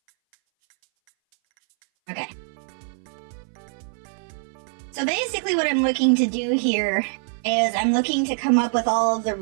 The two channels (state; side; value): silent; left; 59 dB below the other